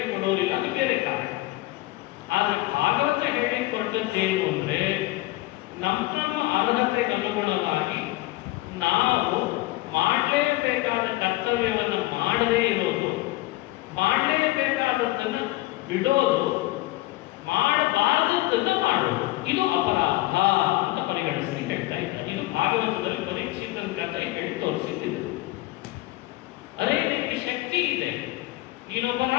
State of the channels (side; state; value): right; quieter; 19.2 dB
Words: ಕೊಡೋರಿಲ್ಲ, ಅದು ಬೇರೆ ಕಾರಣ. ಆದರೆ ಭಾಗವತ ಹೇಳಿ ಕೊಟ್ಟದ್ದೇನು ಅಂದ್ರೆ, ನಮ್ಮ ಅರ್ಹತೆಗೆ ಅನುಗುಣವಾಗಿ ನಾವು ಮಾಡಲೇಬೇಕಾದ ಕರ್ತವ್ಯವನ್ನು ಮಾಡದೇ ಇರೋದು, ಮಾಡಲೇಬೇಕಾದದ್ದನ್ನು ಬಿಡೋದು, ಮಾಡಬಾರದದ್ದನ್ನು ಮಾಡೋದು, ಇದು ಅಪರಾಧ ಅಂತ ಪರಿಗಣಿಸಿ ಹೇಳ್ತಾ ಇದ್ದಾರೆ. ಇದು ಭಾಗವತದಲ್ಲಿ ಪರೀಕ್ಷಿತನ ಕಥೆ ಹೇಳಿ ತೋರಿಸಿದ್ದಿದೆ. ಅರೆ, ನಿನಗೆ ಶಕ್ತಿ ಇದೆ, ನೀನೊಬ್ಬ